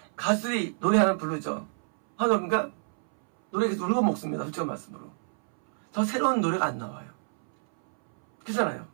가수들이 노래 하나 부르죠. 하나님과 노래 계속 울고 먹습니다. 솔직한 말씀으로. 더 새로운 노래가 안 나와요. 그렇잖아요.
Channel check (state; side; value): silent; left; 60 dB below the other